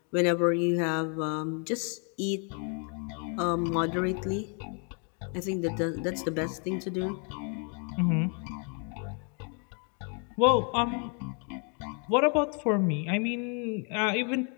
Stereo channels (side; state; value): right; quieter; 38.7 dB